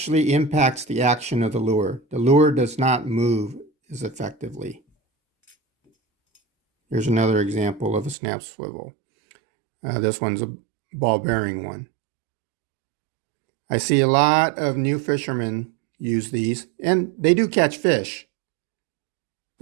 impacts the action of the lure. The lure does not move as effectively. Here's another example of a snap swivel. This one's a ball bearing one. I see a lot of new fishermen use these, and they do catch fish,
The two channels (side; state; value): left; drops out; at 8.2 s